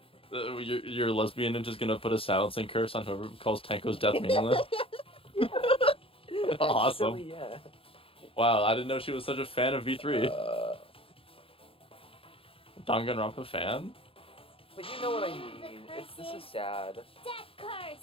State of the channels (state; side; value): late; right; 0.27 ms